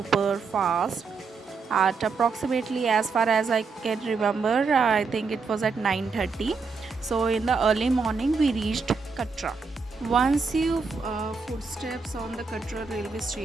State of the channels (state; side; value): quieter; left; 4.7 dB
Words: Fast at approximately, as far as I can remember, I think it was at 9:30. So in the early morning we reached Katra. Once you footsteps on the Katra railway